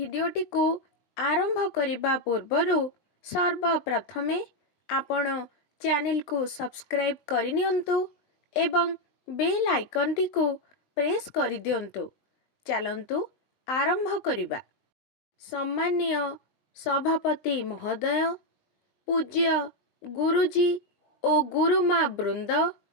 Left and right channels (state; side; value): late; right; 19 ms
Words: को आरंभ करिबा पूर्वरु सर्वप्रथमे आपण चैनल को सब्सक्राइब करिनियंतु एवं बेल आइकन टी को प्रेस करि दियंतु। चलंतु आरंभ करिबा। सम्माननीय सभापति महोदय, पूज्य गुरुजी ओ गुरुमा वृंद